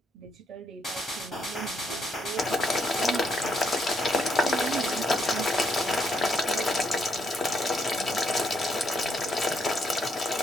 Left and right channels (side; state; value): both; normal; correlation 0.75